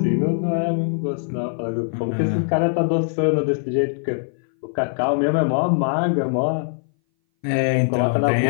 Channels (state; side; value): silent; right; 60 dB below the other